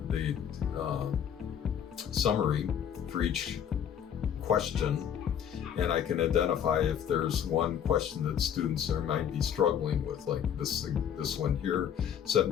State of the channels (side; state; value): right; quieter; 8.8 dB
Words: summary for each question, and I can identify if there's one question that students might be struggling with, like this one here.